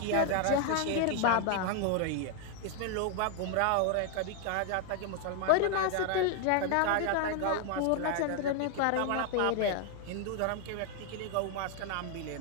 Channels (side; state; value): both; different; correlation 0.00